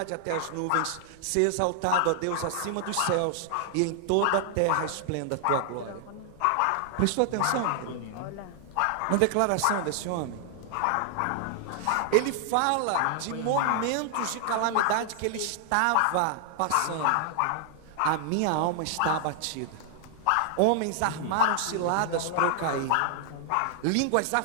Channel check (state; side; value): different; both; correlation 0.00